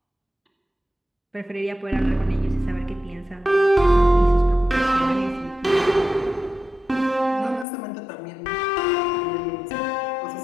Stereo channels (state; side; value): drops out; right; at 7.7 s